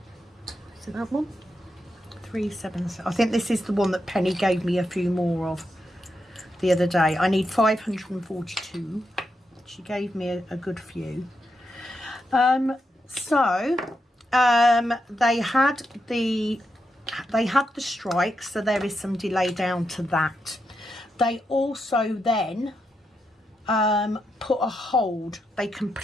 Is it that one? 377. I think this is the one that Penny gave me a few more of the other day. I need 542. She gave me a good few. They had the strike, so there is some delay down to that. They also then put a hold. They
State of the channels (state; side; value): normal; both; correlation 0.84